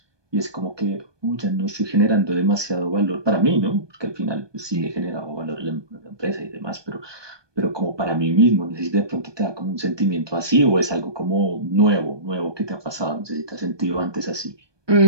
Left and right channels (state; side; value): late; left; 1.2 ms